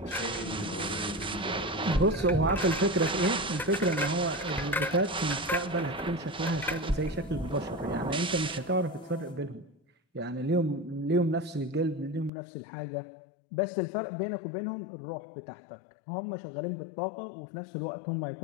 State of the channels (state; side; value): drops out; right; at 12.3 s